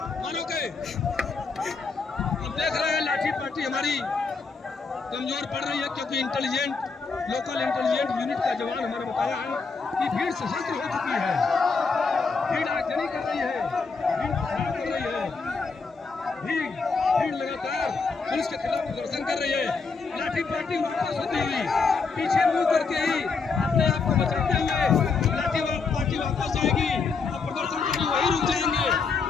मानोगे। अब देख रहे हैं लाठी पार्टी हमारी कमजोर पड़ रही है क्योंकि लोकल इंटेलिजेंट यूनिट का जवान हमारे बताया है कि भीड़ सशस्त्र हो चुकी है, भीड़ आगजनी कर रही है, भीड़ खराब कर रही है, भीड़ लगातार पुलिस के खिलाफ प्रदर्शन कर रही है। लाठी पार्टी वापस होती हुई पीछे मुंह करके ही अपने आप को बचाते हुए लाठी पार्टी वापस जाएगी और प्रदर्शनकारी वही रुक जाएंगे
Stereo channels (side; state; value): right; quieter; 4.7 dB